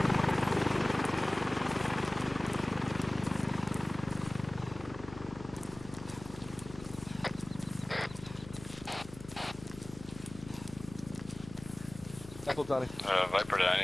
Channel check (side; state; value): left; noise; hum, 16 dB below the sound